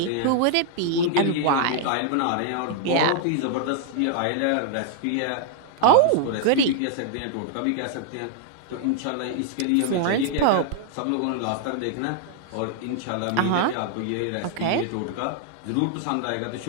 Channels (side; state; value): both; different; correlation 0.00